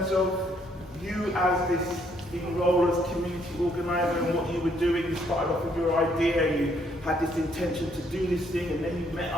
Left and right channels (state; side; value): normal; both; correlation 0.69